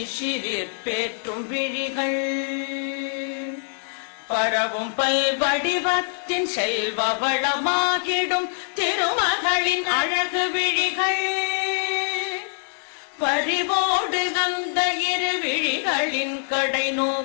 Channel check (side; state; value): right; silent; 63 dB below the other